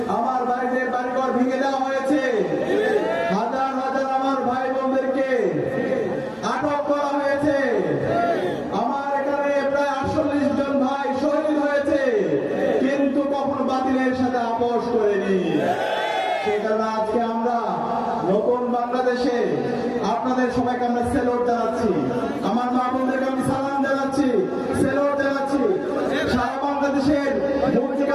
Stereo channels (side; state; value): both; identical; correlation 1.00